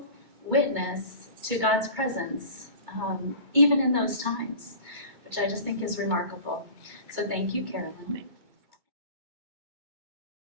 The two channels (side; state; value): left; late; 2.2 ms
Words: witness to God's presence, even in those times, which I just think is remarkable. So thank you, Carolyn.